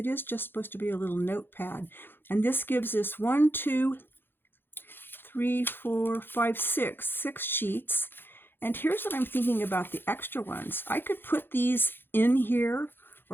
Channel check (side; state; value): right; late; 0.10 ms